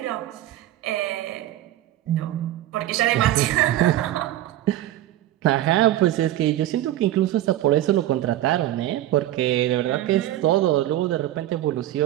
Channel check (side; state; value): left; quieter; 13.9 dB